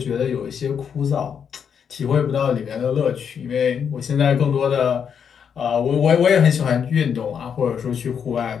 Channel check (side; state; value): right; quieter; 7.4 dB